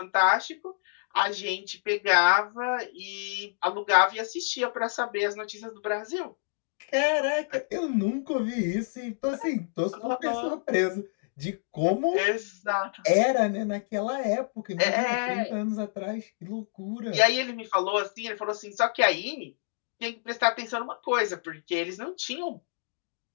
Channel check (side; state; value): right; silent; digital silence